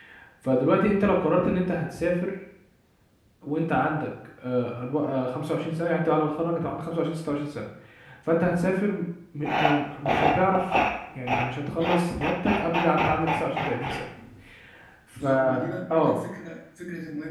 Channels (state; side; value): identical; both; correlation 1.00